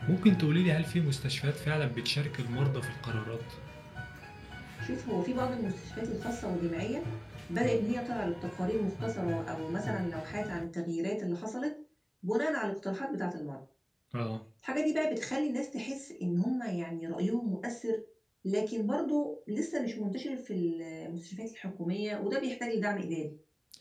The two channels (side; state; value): both; identical; correlation 1.00